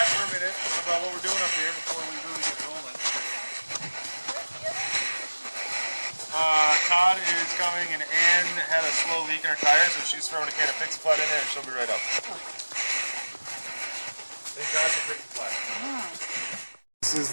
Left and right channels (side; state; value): both; inverted; correlation -1.00